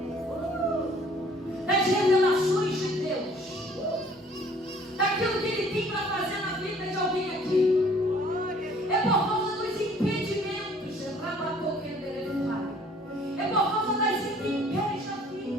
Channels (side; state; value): both; normal; correlation 0.56